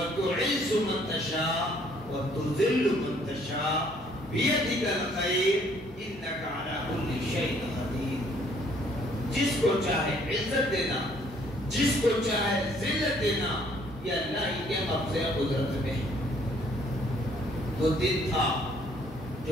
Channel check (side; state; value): both; normal; correlation 0.63